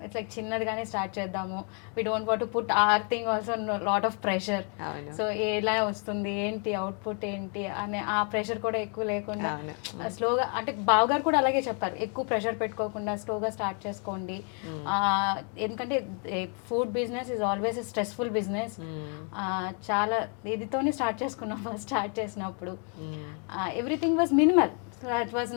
It's like చిన్నదిగానే start చేద్దాము, we don't want to put our thing also lot of pressure. So ఎలా వస్తుంది ఏంటి అవుట్పుట్ ఏంటి అనే ఆ ప్రెషర్ కూడా ఎక్కువ లేకుండా స్లోగా, అంటే బావగారు కూడా అలాగే చెప్పారు, ఎక్కువ ప్రెషర్ పెట్టుకోకుండా స్లోగా స్టార్ట్ చేసుకోండి. ఎందుకంటే food business is always a stressful business. చాలా ఇదితోనే స్టార్ట్ చేసుకున్నాం ఫస్ట్ స్టార్ట్ చేసినప్పుడు. Everything was minimal. So it was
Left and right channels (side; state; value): right; quieter; 40.0 dB